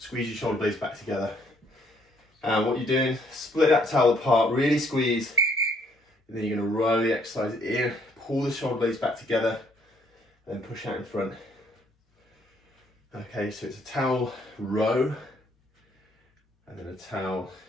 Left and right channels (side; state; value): both; normal; correlation 0.66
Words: your shoulder blades back together. And what you're doing, split that towel apart, really squeeze, and then you're going to roll the exercise in, pull the shoulder blades back together, and then push out in front. Okay, so it's a towel row, and then a towel